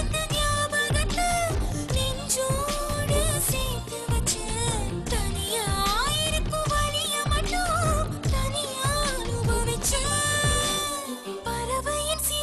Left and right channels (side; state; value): both; identical; correlation 1.00